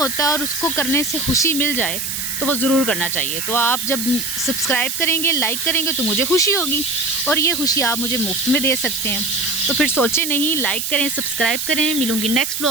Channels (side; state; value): right; noise; hiss, 3 dB below the sound